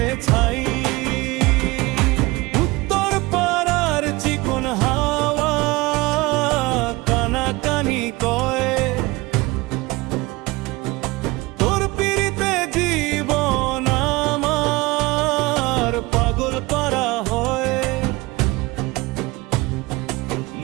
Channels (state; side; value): quieter; left; 22.2 dB